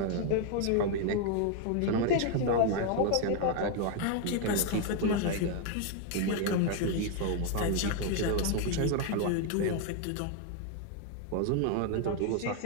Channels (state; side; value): different; both; correlation 0.00